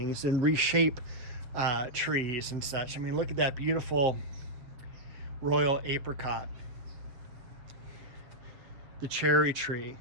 and reshape trees and such. Look at that beautiful royal apricot. The cherry tree.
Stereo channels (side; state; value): left; late; 7.2 ms